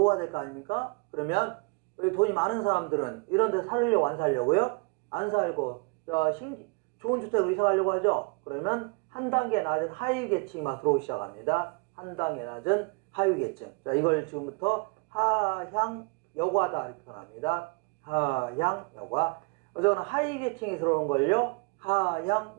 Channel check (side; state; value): left; quieter; 31.6 dB